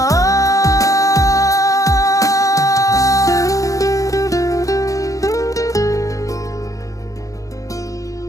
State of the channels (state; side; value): late; right; 0.16 ms